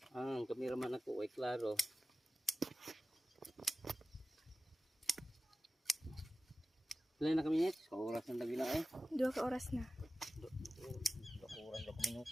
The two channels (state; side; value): normal; both; correlation 0.94